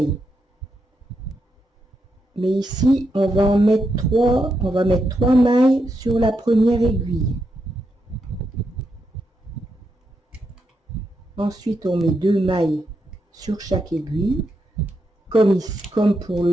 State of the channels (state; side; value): normal; both; correlation 0.83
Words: Mais ici, on va mettre 3 mailles sur la première aiguille. Ensuite, on met 2 mailles sur chaque aiguille, comme pour